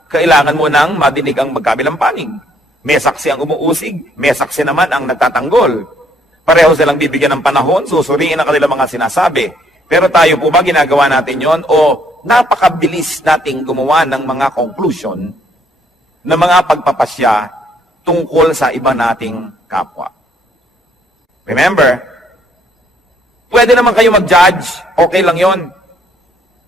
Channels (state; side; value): normal; both; correlation 0.66